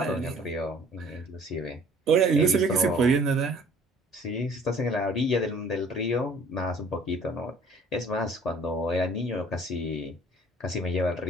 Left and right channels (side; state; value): both; normal; correlation 0.53